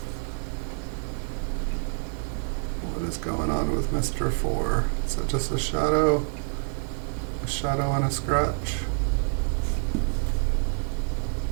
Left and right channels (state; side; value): silent; left; 60 dB below the other